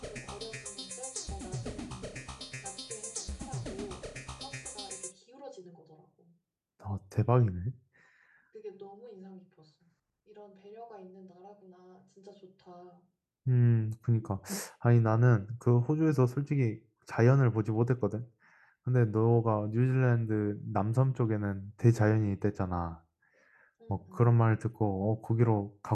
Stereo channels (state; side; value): identical; both; correlation 1.00